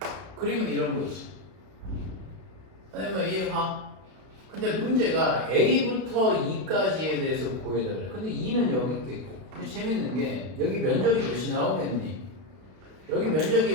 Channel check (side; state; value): left; late; 32 ms